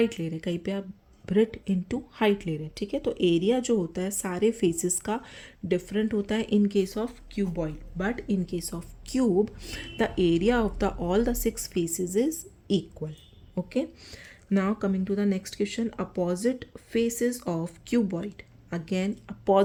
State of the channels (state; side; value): identical; both; correlation 1.00